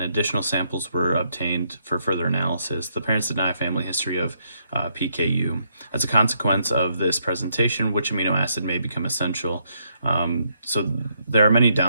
additional samples were obtained for further analysis. The parents deny family history of PKU. As a consequence of this presentation, which amino acid may become essential? So there are many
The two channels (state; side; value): inverted; both; correlation -0.74